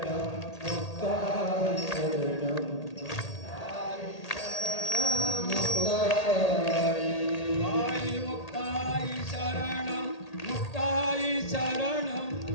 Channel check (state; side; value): late; right; 1.8 ms